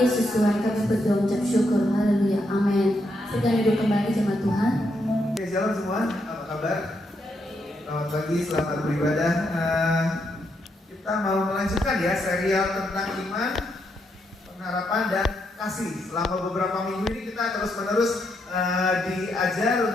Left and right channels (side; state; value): both; normal; correlation 0.79